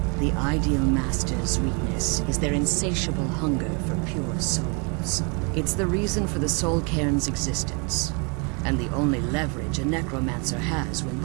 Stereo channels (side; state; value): left; quieter; 34.2 dB